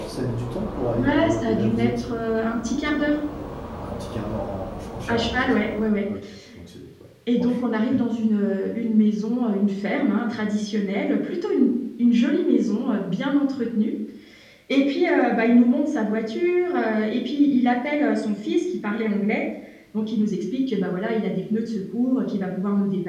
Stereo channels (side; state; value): both; identical; correlation 1.00